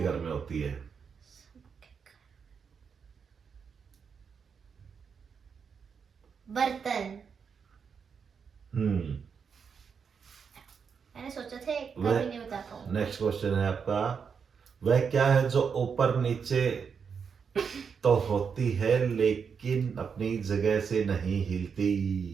घर में होती है। सबके घर। बर्तन। मैंने सोचा था कभी नहीं बता पाऊंगा। नेक्स्ट क्वेश्चन है आपका, वह क्या है जो ऊपर नीचे तो होती है लेकिन अपनी जगह से नहीं हिलती?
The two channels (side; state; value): left; quieter; 6.3 dB